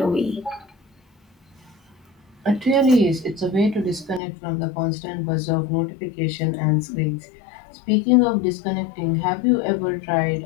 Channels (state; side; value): drops out; right; at 4.2 s